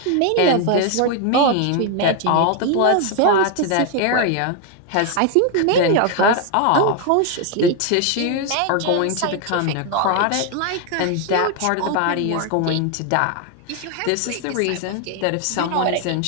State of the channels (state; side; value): different; both; correlation 0.01